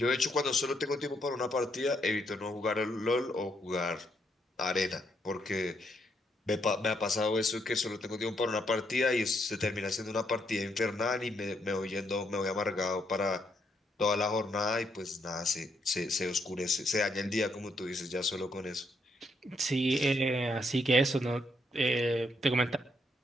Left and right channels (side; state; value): both; normal; correlation 0.75